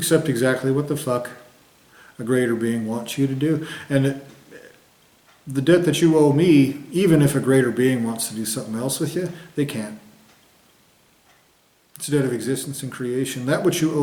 exactly what the fuck a greater being wants you to do. And the debt that you owe me, even if a greater being wants to do something else with you, they can't. It's a debt of existence and creation. That which you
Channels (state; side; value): identical; both; correlation 1.00